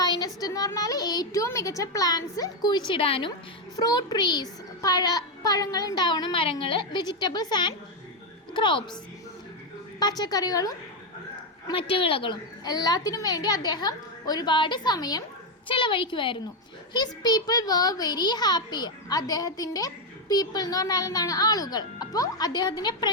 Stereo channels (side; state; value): both; normal; correlation 0.06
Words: എന്ന് പറഞ്ഞാൽ ഏറ്റവും മികച്ച പ്ലാന്റ്സ് കുഴിച്ചിടാനും. ഫ്രൂട്ട് ട്രീസ്, പഴങ്ങൾ ഉണ്ടാവുന്ന മരങ്ങൾ. വെജിറ്റബിൾസ് ആൻഡ് ക്രോപ്സ്, പച്ചക്കറികളും മറ്റു വിളകളും. എല്ലാത്തിനും വേണ്ടി അദ്ദേഹം ഒരുപാട് സമയം ചെലവഴിക്കുമായിരുന്നു. His people were very happy. അദ്ദേഹത്തിൻ്റെ പീപ്പിൾ എന്ന് പറഞ്ഞാൽ എന്താണ്? ആളുകൾ. അപ്പോൾ അദ്ദേഹത്തിൻ്റെ